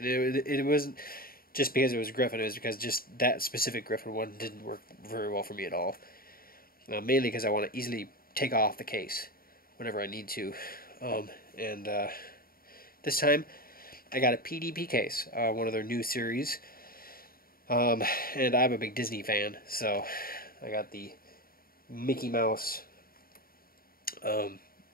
wasn't just because it was Griffin, it was because just that specific Griffin one didn't work very well for me at all. Mainly because I want to easily take off the case whenever I need to. This time I got a PDP case, one of their new series. And I'm a big Disney fan, so I got the Mickey Mouse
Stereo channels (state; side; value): late; right; 0.43 ms